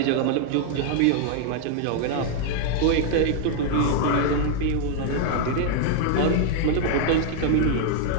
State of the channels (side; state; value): both; different; correlation 0.00